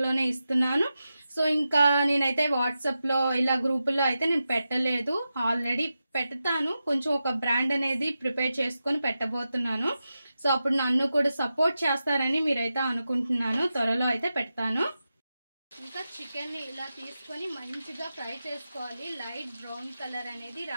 ఇస్తున్నాను. సో ఇంకా నేనైతే వాట్సాప్లో ఇలా గ్రూపుల్లో అయితే నేను పెట్టలేదు. ఆల్రెడీ పెడతాను. కొంచెం ఒక బ్రాండ్ అనేది ప్రిపేర్ చేసుకొని పెట్టబోతున్నాను. సో అప్పుడు నన్ను కూడా సపోర్ట్ చేస్తారని మీరైతే అనుకుంటున్నాను. త్వరలో అయితే పెడతాను. ఇంకా చికెన్ ని ఇలా తీసుకొని మంచిగా ఫ్రై చేసుకోవాలి. లైట్ బ్రౌన్ కలర్ అనేది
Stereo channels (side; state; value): both; inverted; correlation -0.91